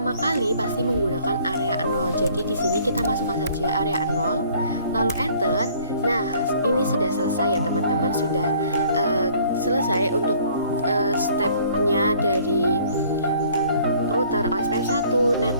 kali pasti menggunakan area 0. Jadi di sini kita masukkan saja area 0, lalu enter. Nah, ini sudah selesai ya teman-teman, sudah selesai untuk stepnya dari router OSPF 1,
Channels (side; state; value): both; inverted; correlation -0.57